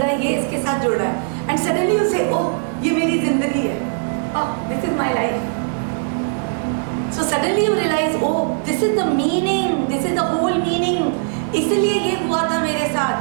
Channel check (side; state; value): left; silent; 66 dB below the other